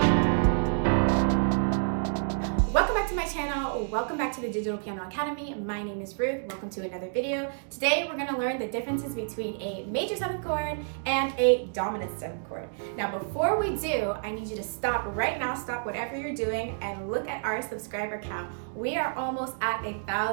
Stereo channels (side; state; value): left; silent; digital silence